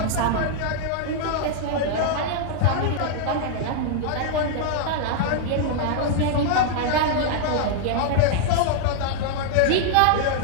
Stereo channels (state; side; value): different; both; correlation 0.00